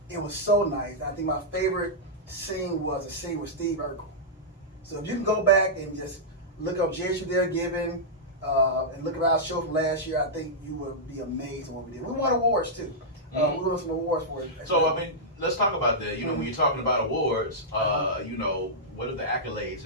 it was so nice. I think my favorite scene was a scene with Steve Urkel. So if you can go back and just look up JSU They're Giving and look at our show from last year, I think you will be amazed at what we did. We won awards too. We won some awards for it. So I mean, let's talk about that. When you're talking about awards, what are the accolades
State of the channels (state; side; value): normal; both; correlation -0.11